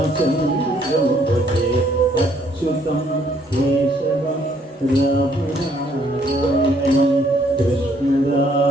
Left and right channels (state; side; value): normal; both; correlation 0.66